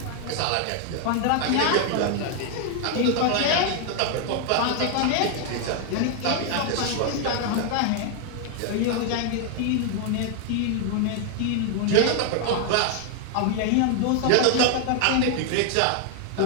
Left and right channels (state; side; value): different; both; correlation 0.00